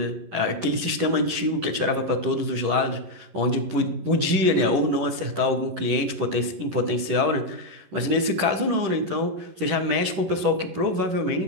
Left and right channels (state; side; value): late; left; 11 ms